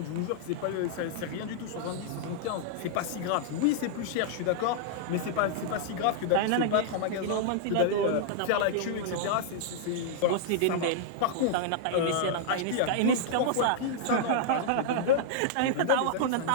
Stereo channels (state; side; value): different; both; correlation -0.01